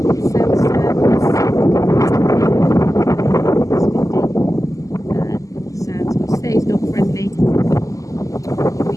Self-service. Sounds, which stays dog friendly all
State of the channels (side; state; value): right; late; 0.16 ms